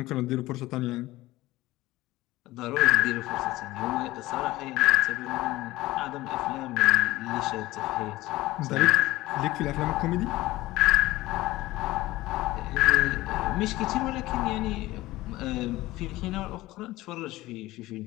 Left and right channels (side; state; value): right; quieter; 17.9 dB